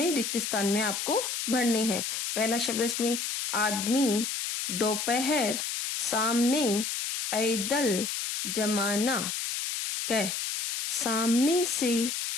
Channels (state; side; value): noise; left; hiss, 3 dB below the sound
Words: रिक्त स्थान में आपको भरने हैं। पहला शब्द इसमें आदमी, दोपहर, सामने, पैदल, जमाना। कै, सामने से